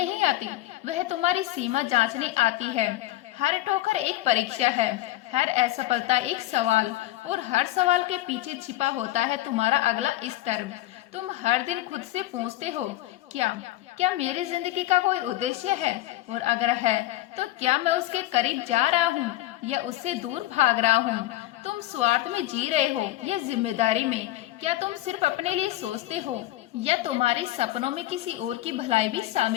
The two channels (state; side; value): quieter; right; 16.1 dB